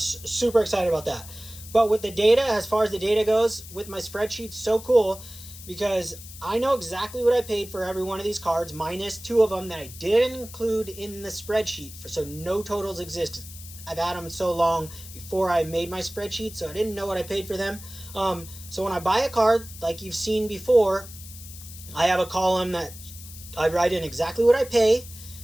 super excited about that. But with the data, as far as the data goes, with my spreadsheet, so cool because I know exactly what I paid for every one of these cards, minus 2 of them that I didn't include in the spreadsheet. So no totals exist. I've had them so long before I made my spreadsheet, so I didn't know what I paid for them. So when I buy a card, like you've seen before, I have a column that I write in exactly what I pay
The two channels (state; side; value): noise; left; hiss, 15 dB below the sound